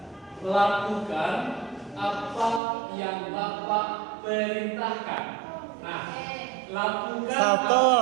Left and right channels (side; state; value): left; drops out; at 2.6 s